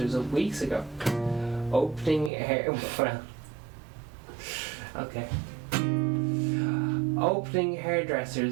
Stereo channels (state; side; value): drops out; left; at 2.3 s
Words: up weeks ago. Opening